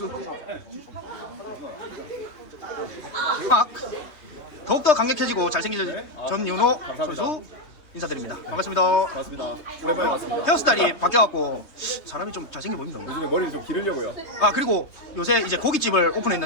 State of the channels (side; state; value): right; late; 3.2 ms